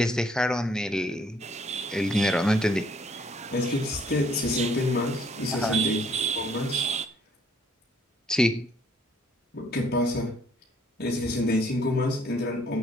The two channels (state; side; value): normal; both; correlation 0.64